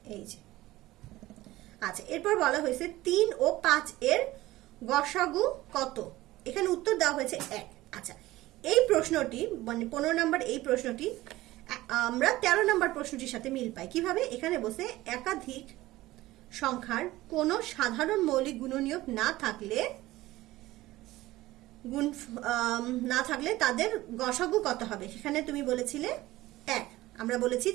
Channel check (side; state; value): left; quieter; 17.4 dB